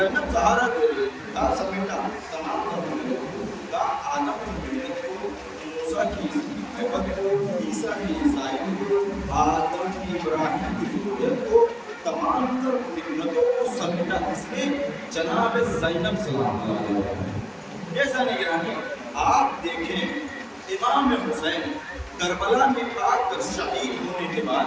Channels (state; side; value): identical; both; correlation 1.00